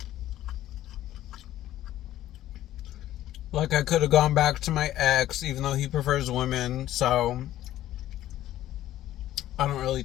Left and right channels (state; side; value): quieter; right; 13.5 dB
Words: Like, I could have gone back to my ex, even though he prefers women, so I don't really